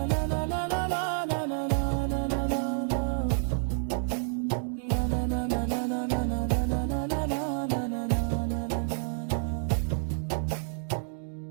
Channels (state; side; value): silent; left; 58 dB below the other